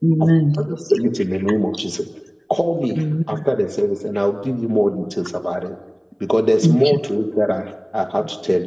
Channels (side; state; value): both; identical; correlation 1.00